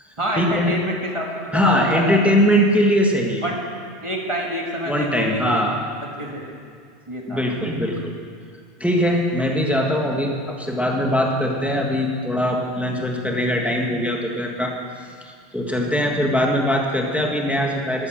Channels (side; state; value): both; normal; correlation 0.45